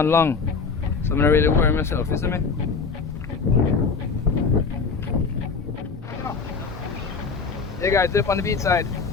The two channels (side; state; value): right; quieter; 5.0 dB